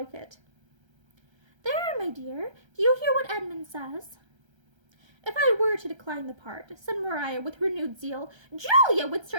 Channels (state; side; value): late; left; 1.3 ms